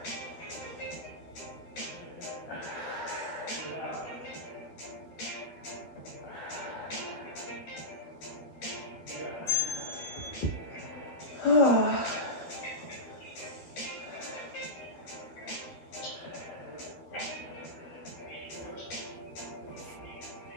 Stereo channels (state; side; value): late; right; 12 ms